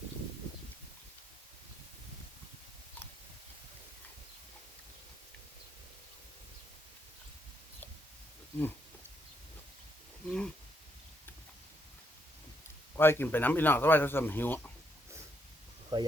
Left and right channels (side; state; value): both; normal; correlation 0.75